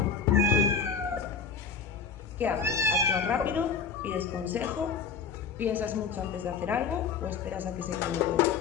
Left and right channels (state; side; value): quieter; right; 5.9 dB